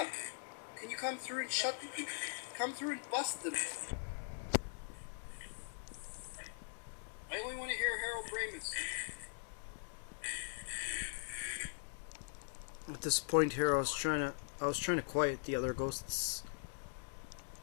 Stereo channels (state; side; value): silent; right; digital silence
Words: Can you come through and come through and bust them? I only want to hear Harold Ramis. At this point here, I was trying to quiet the other ghosts